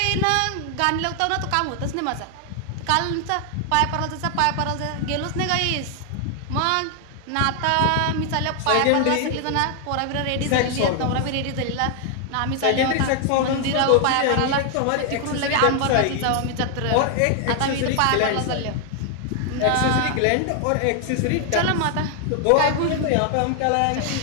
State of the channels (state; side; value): different; both; correlation 0.00